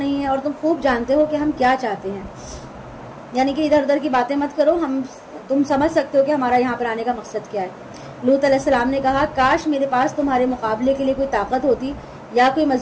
ہے اور تم خوب جانتے ہو کہ ہم کیا چاہتے ہیں، یعنی کہ ادھر ادھر کی باتیں مت کرو، تم سمجھ سکتے ہو کہ ہمارا یہاں پر آنے کا مقصد کیا ہے۔ لوط علیہ السلام نے کہا کاش میرے پاس تمہارے مقابلے کے لیے کوئی طاقت ہوتی یا کوئی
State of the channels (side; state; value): both; identical; correlation 1.00